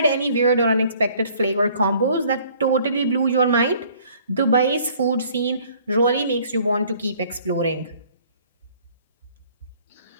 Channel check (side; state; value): both; inverted; correlation -0.57